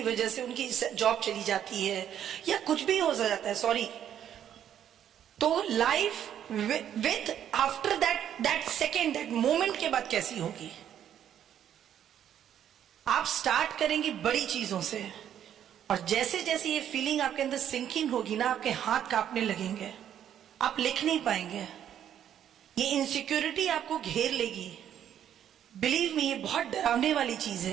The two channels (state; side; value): quieter; left; 10.0 dB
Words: वजह से उनकी जॉब चली जाती है या कुछ भी हो जाता है, सॉरी, तो life with after that second, that moment के बाद कैसी होगी। आप स्टार्ट करेंगे बड़ी चीजों से, और जैसे जैसे ये फीलिंग आपके अंदर सिंकिंग होगी ना, आपके हाथ कांपने लगेंगे, आप लिख नहीं पाएंगे, ये इनसिक्योरिटी आपको घेर लेगी। बिलीव मी, ये बहुत डरावने वाली चीज